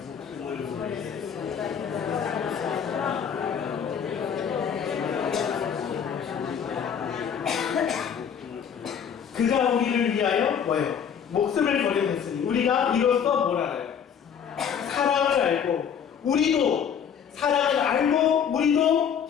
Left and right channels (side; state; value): right; quieter; 7.8 dB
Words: 그가 우리를 위하여 뭐예요? 목숨을 버려냈으니 우리가 이로써 뭘 알아요? 사랑을 알고, 우리도 사랑을 알고 우리도